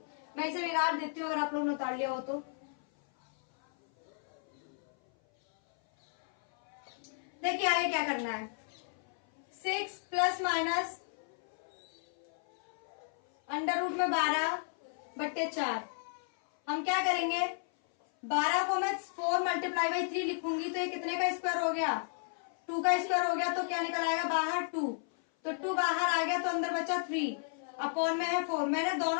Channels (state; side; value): silent; right; 55 dB below the other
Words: मैं इसे बिगाड़ देती हूँ अगर आप लोग ने उतार लिया हो तो। देखिए आगे क्या करना है, 6 प्लस माइनस में 12/4। हम क्या करेंगे, 12 को मैं 4 × 3 लिखूंगी तो ये कितने का स्क्वायर हो गया, 2 का स्क्वायर हो गया। तो क्या निकल आएगा बाहर 2, तो 2 बाहर आ गया तो अंदर बचा 3 अपॉन में है 4। मैंने